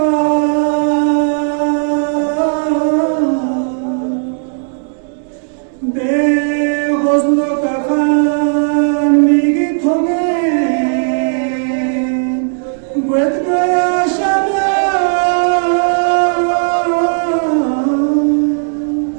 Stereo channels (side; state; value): left; silent; 65 dB below the other